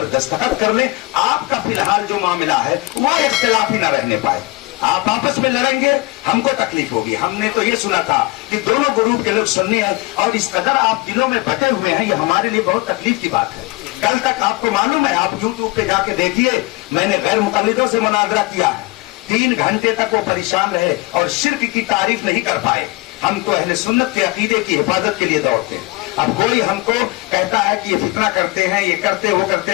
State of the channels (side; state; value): right; quieter; 23.1 dB